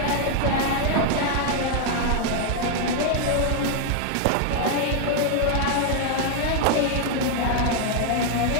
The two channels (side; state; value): both; different; correlation 0.00